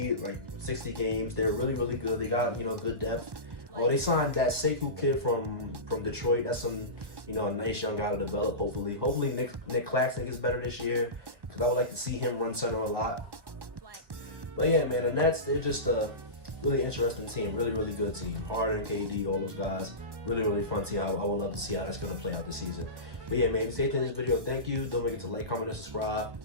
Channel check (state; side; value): late; left; 1.1 ms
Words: like 60 games. They're really, really good. They got, good depth. Oh, they signed that Sekou kid from Detroit. That's some, a nice young guy to develop, hopefully. Hopefully Nick Claxton gets better this year, because I would like to see him run center a lot. But yeah, man, the Nets, they're just a really interesting team. Really, really good team. Harden, KD, all those guys. really, really fun to see how I would love to see how that's going to play out this season. But yeah, man, if you stay tuned in this video, thank you. Don't forget to like, comment, and subscribe,